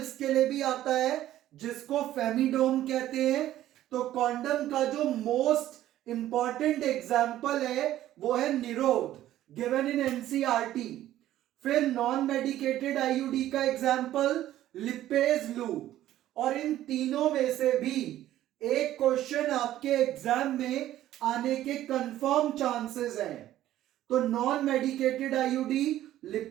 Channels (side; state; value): left; quieter; 13.4 dB